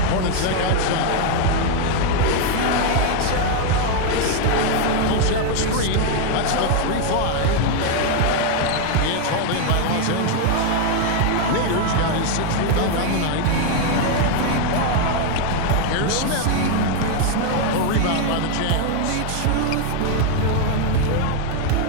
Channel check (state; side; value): different; both; correlation 0.01